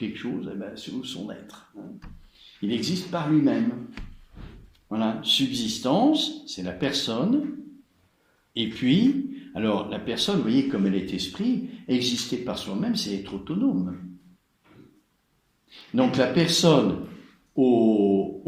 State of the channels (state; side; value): identical; both; correlation 1.00